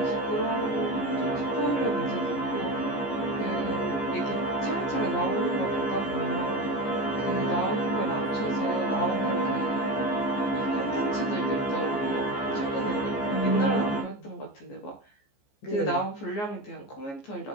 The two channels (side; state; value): right; late; 14 ms